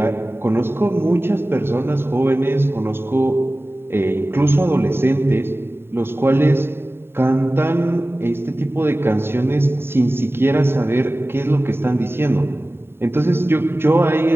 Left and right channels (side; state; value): left; late; 0.11 ms